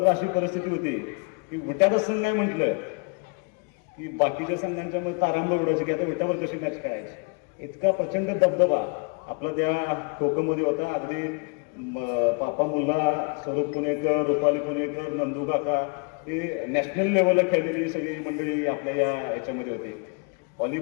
अशी परिस्थिती होती की विट्याचा संघ आहे म्हटलं की बाकीच्या संघांच्या मध्ये तारांबळ उडायची की आता विट्यावर कशी मॅच करायची. इतका प्रचंड दबदबा आपला त्या खो खोमध्ये होता. अगदी पापा मुल्ला, स्वरूप पुणेकर, रुपाली पुणेकर, नंदू काका, हे नॅशनल लेवलला खेळलेली सगळी मंडळी आपल्या याच्यामध्ये होती.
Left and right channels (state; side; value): quieter; right; 35.5 dB